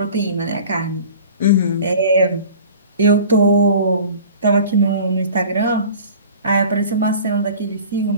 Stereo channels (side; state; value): both; inverted; correlation -0.43